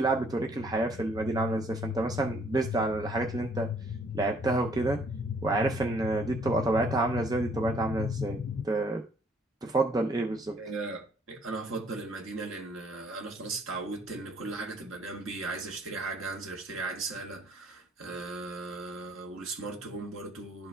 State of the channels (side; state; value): both; normal; correlation 0.63